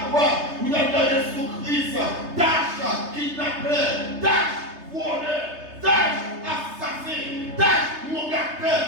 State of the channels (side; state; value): left; late; 3.3 ms